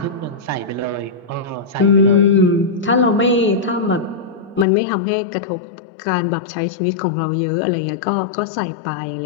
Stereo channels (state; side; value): drops out; right; at 4.7 s